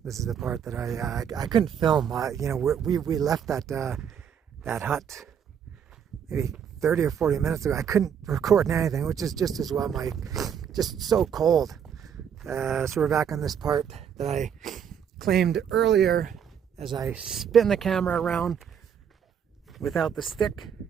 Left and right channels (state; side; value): quieter; left; 8.1 dB